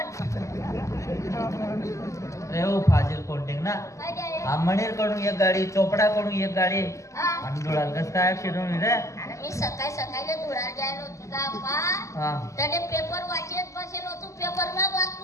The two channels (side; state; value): right; late; 0.15 ms